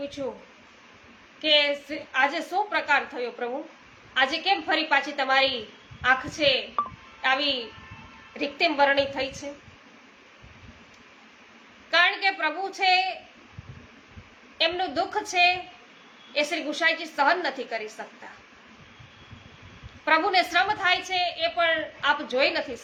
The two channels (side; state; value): both; identical; correlation 1.00